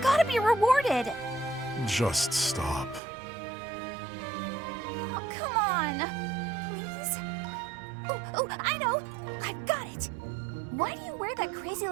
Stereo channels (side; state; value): left; drops out; at 3.0 s